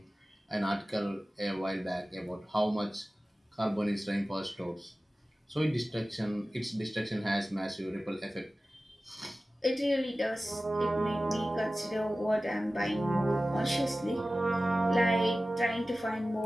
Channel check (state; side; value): normal; both; correlation 0.96